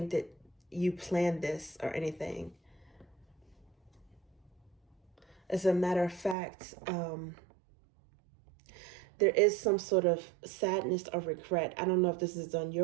that you planned this or anything. As a matter of fact, there is some sort of sadness or regret. I don't know if this is on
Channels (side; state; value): left; drops out; at 6.4 s